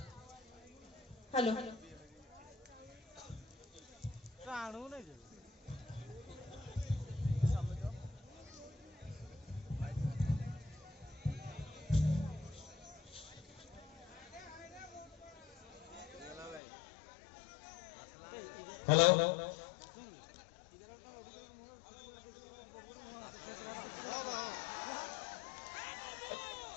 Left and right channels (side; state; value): right; drops out; at 16.6 s